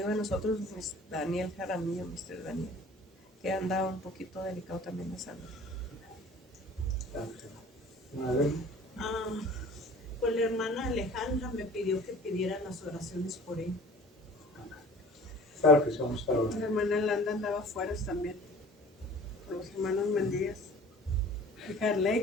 de nosotros, Daniel Jaramillo, Mr. Daniel, que anda un poquito delicado también de salud. Pues la hermana Alejandra me pidió que pidiera las oraciones por él. Claro que sí, vamos a estar La orando. hermana Landa andaba afuera también, con los hermanos Mendías. Y Carley,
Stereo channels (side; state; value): both; normal; correlation 0.46